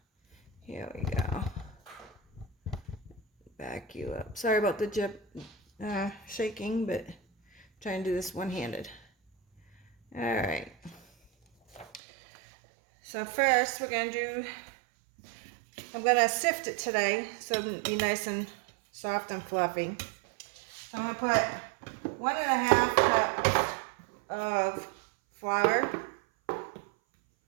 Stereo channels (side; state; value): left; drops out; at 12.0 s